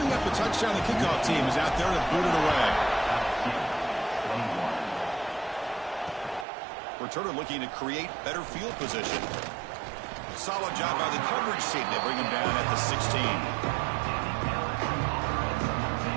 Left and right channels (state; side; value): drops out; left; at 6.5 s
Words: up the touchdown, the kickoff team is out there to boot it away. Returner looking to create better field position. Solid job by the coverage team. They bring him down at the 16.